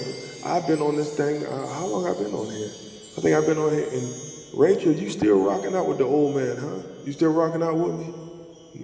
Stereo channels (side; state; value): both; identical; correlation 1.00